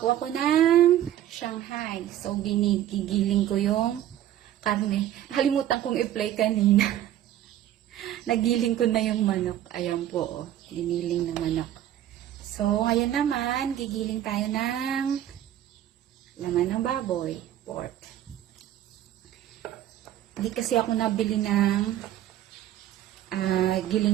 po ako ng Shanghai. So, ginigiling ko yung karne. Nakalimutan kong i-play kanina. Nagiling ko na yung manok. Ayan po, oh. Giniling na manok. So, ngayon naman, gigiling tayo ng laman ng baboy, pork. Hindi kasi ako nabili ng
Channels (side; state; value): left; quieter; 12.2 dB